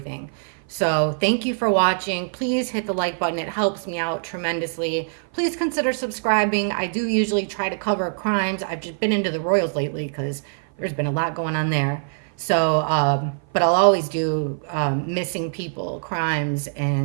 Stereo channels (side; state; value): left; silent; 55 dB below the other